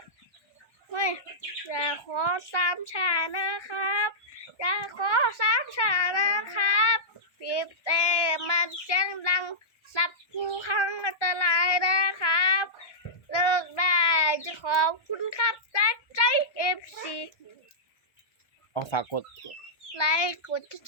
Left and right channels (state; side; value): late; right; 1.1 ms